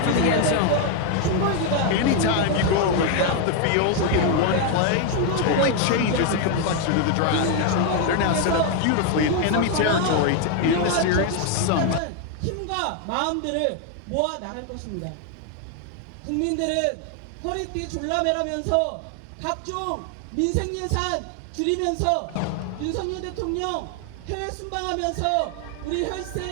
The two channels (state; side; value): different; both; correlation 0.01